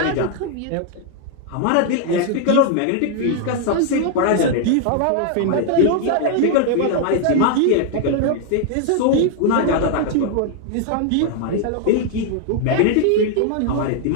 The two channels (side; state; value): both; different; correlation 0.00